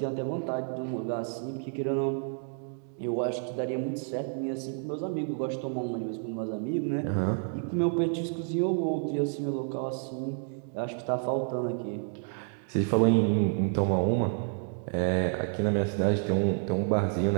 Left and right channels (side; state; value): left; silent; 57 dB below the other